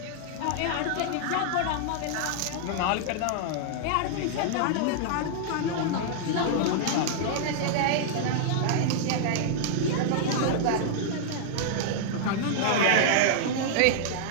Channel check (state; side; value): different; both; correlation -0.01